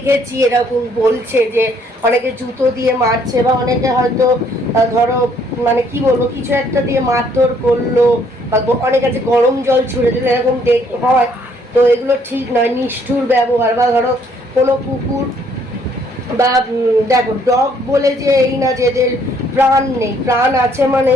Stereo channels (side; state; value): both; normal; correlation 0.65